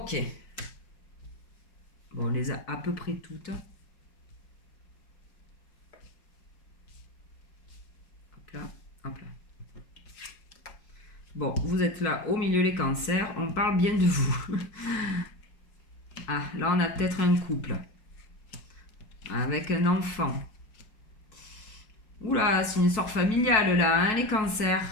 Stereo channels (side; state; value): right; late; 4.6 ms